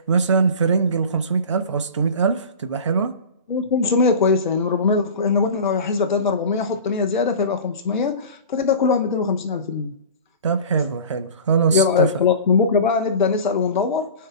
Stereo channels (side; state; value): both; inverted; correlation -0.35